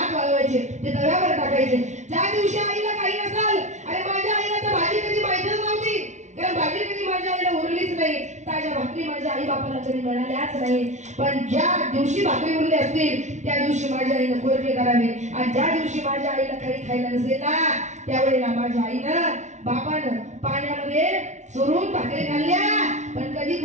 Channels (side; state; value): left; late; 0.34 ms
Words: वाळवायचे, ते तव्यावर टाकायचे. ज्या दिवशी आईला काही नसाल, अरे माझ्या आईला तर भाजी कधी माहितच नव्हती, कारण भाजी कधी माझ्या आईला उरलीच नाही, ताज्या भाकरी माझ्या आई बापाला कधी मिळाल्याच नाही. पण ज्या दिवशी भाकरी उरली असतील त्या दिवशी माझ्या आईनं कोरके करावे. आणि ज्या दिवशी माझ्या आईला काही खायला नसेल ना त्यावेळेला माझ्या आईनं बापानं पाण्यामध्ये चोरून भाकरी खाल्ल्या, पण कधी